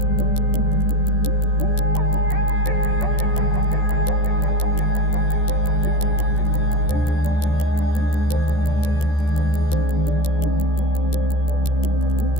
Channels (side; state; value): right; late; 14 ms